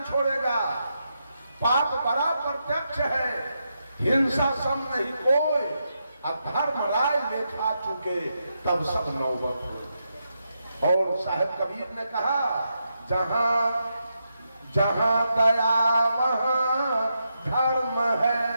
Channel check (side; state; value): both; inverted; correlation -0.84